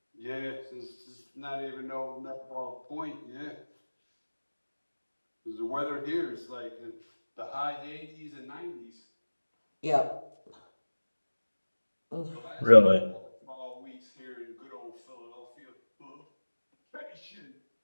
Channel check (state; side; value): inverted; both; correlation -1.00